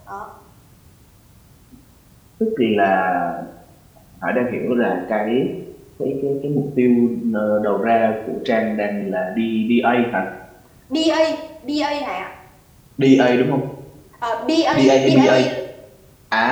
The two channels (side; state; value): both; identical; correlation 1.00